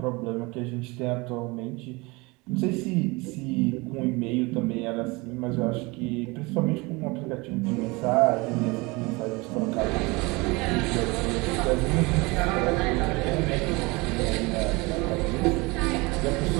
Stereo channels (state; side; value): quieter; left; 25.1 dB